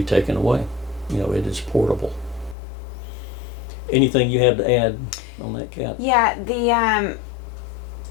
taken away. It is portable. Anything you have to add on that, Kat? Yeah,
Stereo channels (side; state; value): right; drops out; at 2.6 s